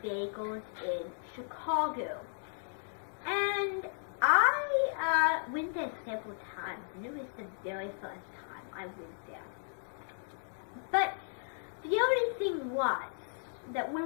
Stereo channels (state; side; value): silent; right; digital silence